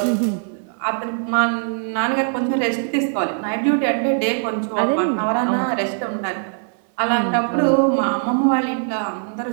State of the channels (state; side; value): silent; left; 59 dB below the other